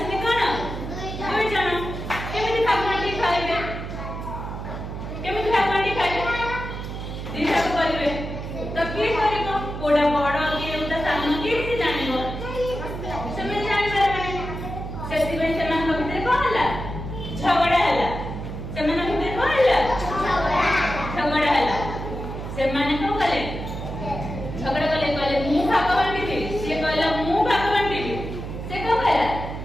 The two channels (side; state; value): right; noise; hum, 7 dB below the sound